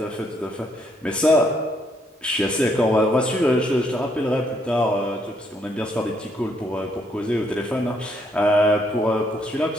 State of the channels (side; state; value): both; normal; correlation 0.71